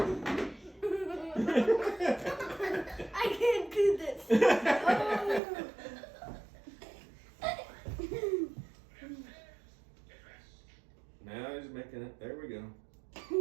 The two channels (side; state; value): left; drops out; at 5.4 s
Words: I can't do this. Now he's making it. There we go.